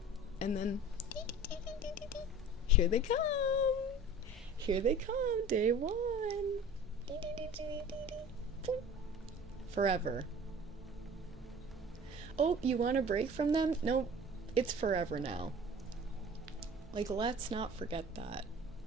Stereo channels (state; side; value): normal; both; correlation 0.42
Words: And then, here they come. Here they come, day one. Forever. Oh, you want a break from them? Nope, it's forever now. Like, let's not forget that.